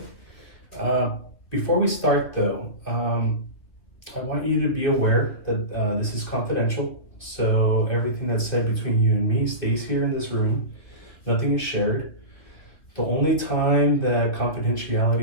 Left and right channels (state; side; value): late; right; 2.6 ms